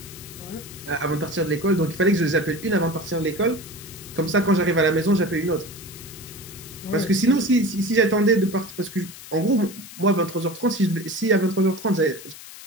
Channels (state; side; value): noise; left; hiss, 15 dB below the sound